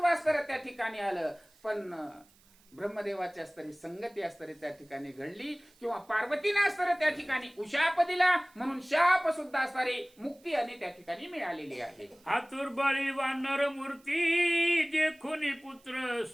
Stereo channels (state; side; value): noise; right; hiss, 30 dB below the sound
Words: असणारं त्या ठिकाणी आलं. पण ब्रह्मदेवाची असणारी संगती असणारी त्या ठिकाणी घडली, किंवा पार्वतीने असणारं त्या ठिकाणी उशाप दिला म्हणून शाप सुद्धा असणारी मुक्ती आणि त्या ठिकाणी मिळालेली आहे. आतुरबाळी वानर मूर्ती देखुनी पुत्र